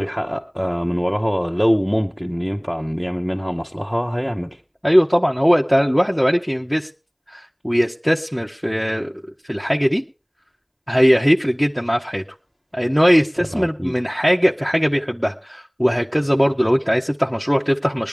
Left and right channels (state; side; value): identical; both; correlation 1.00